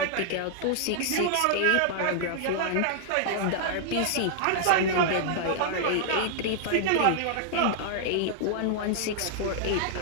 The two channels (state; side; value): different; both; correlation -0.01